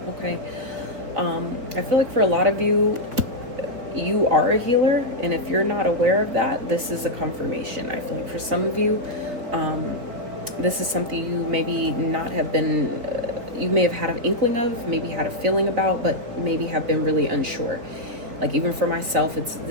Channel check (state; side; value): late; left; 4.3 ms